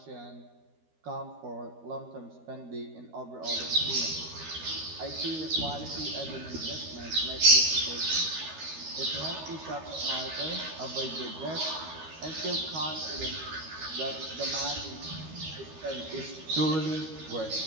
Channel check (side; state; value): left; late; 13 ms